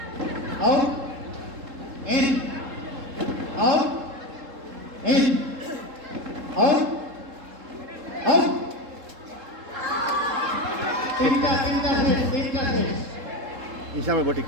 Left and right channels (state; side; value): late; left; 3.7 ms